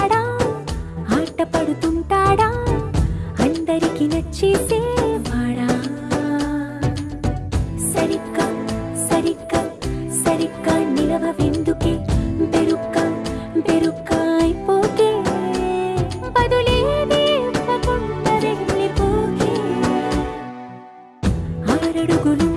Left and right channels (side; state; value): both; identical; correlation 1.00